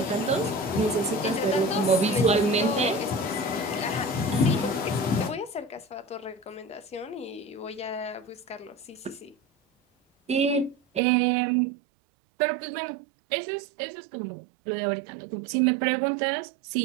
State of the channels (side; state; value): left; drops out; at 11.0 s